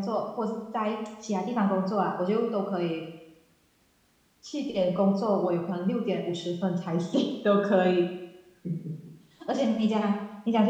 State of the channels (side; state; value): both; identical; correlation 1.00